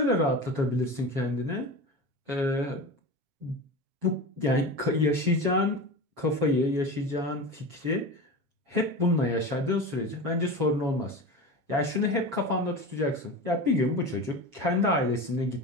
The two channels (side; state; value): left; late; 7.2 ms